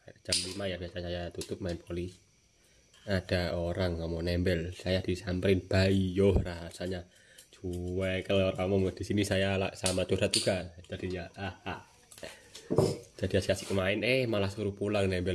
jam 5 ya biasa saya tutup main poli. Ada orang ngomong nembel, saya disamperin, bayo rasanya cuek. Kalau orang mau di sini saya sama curhat juga jadinya. Jadi asik-asik main, malah suruh pulang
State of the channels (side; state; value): both; identical; correlation 1.00